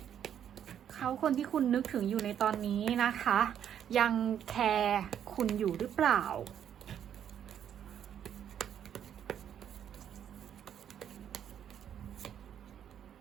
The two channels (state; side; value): quieter; left; 9.4 dB